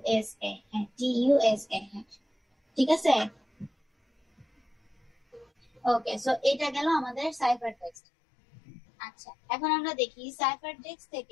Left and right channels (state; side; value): drops out; right; at 7.9 s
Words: S A, হ্যাঁ টি ইউ এস এ, হ্যাঁ ঠিক আছে। ওকে, সো এটা গেল আমাদের সাইফার টেক্সট। আচ্ছা, এখন আমরা দেখি সাইফার টেক্সট